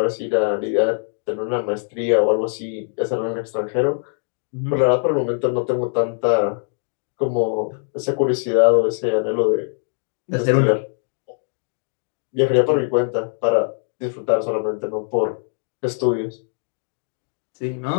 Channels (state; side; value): silent; right; digital silence